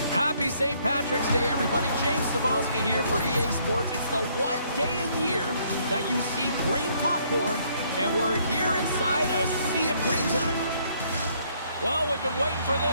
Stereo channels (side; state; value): both; inverted; correlation -0.67